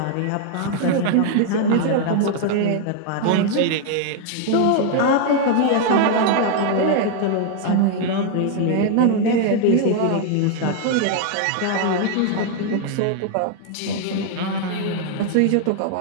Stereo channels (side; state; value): both; different; correlation 0.00